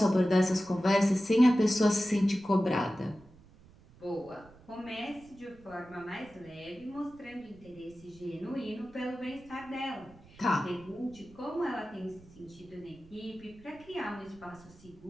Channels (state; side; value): noise; right; rumble, 24 dB below the sound